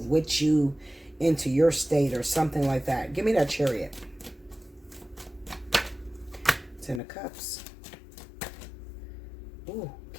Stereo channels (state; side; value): drops out; right; at 7.0 s